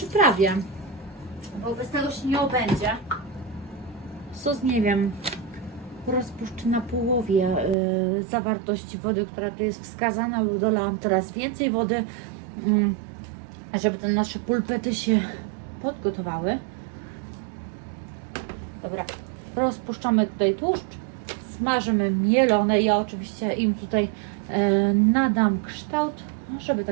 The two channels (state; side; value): drops out; left; at 7.8 s